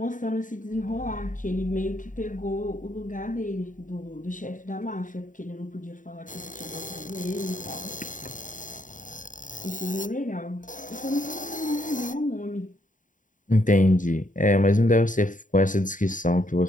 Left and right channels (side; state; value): right; late; 0.38 ms